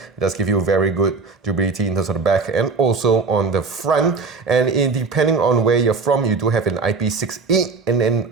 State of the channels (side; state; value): left; quieter; 4.5 dB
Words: does give you very good durability in terms of the back and also on the front. And depending on where you're from, you do have an IP68 and an